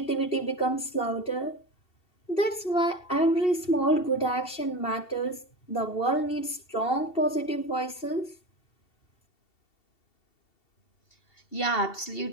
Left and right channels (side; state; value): right; late; 2.7 ms